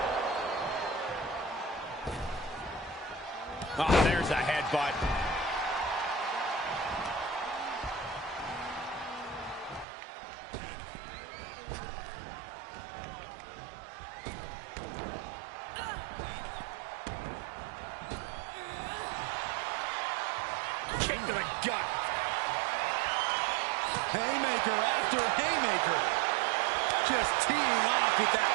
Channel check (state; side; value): drops out; left; at 9.9 s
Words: Oh, there's a headbutt. Kick to the gut. Haymaker after haymaker. Just teeing off with that